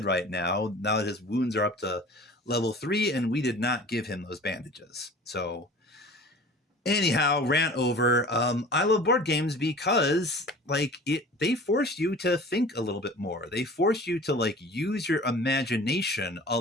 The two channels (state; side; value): normal; both; correlation 0.42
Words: right now. Now that his wounds are up to level 3, and we did not give him those bandages. So anyhow, rant over. I love board games because they force you to think a little bit more. They force you to like use your imagination a